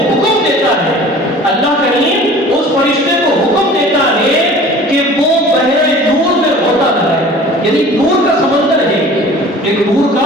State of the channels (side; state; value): both; normal; correlation 0.44